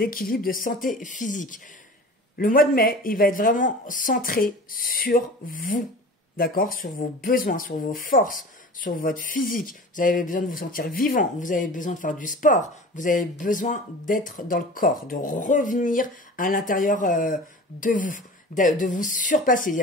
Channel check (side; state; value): both; normal; correlation 0.38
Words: de santé physique. Le mois de mai, il va être vraiment centré sur vous, d'accord? Sur vos besoins, sur vos forces, sur votre physique. Vous avez besoin de vous sentir vivant, vous avez besoin de faire du sport, vous avez besoin d'être dans le corps, de revenir à l'intérieur de vous. de vous surpasser. Il y